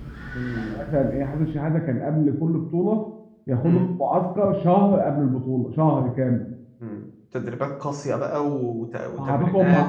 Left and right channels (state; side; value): identical; both; correlation 1.00